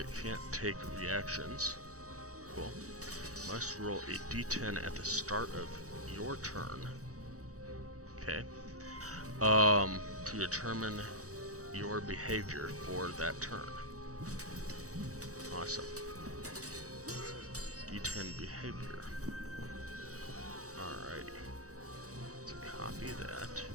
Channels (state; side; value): late; left; 0.66 ms